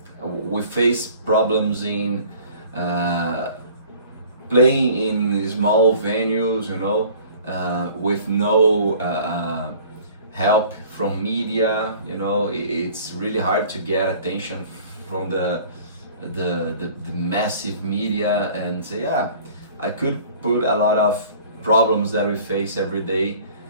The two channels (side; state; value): both; inverted; correlation -0.49